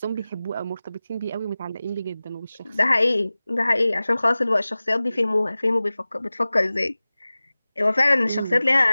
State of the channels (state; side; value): inverted; both; correlation -0.97